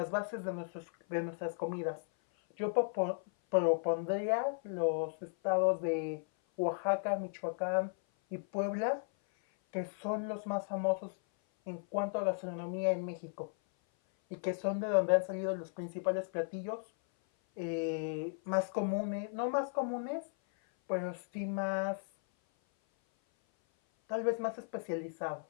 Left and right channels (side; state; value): right; silent; 54 dB below the other